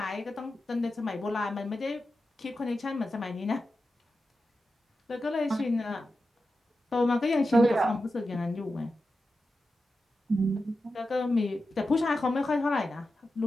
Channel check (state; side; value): normal; both; correlation 0.91